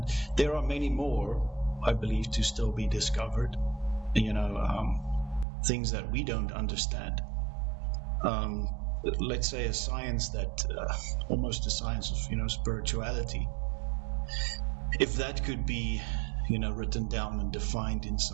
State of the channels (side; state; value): left; drops out; at 5.5 s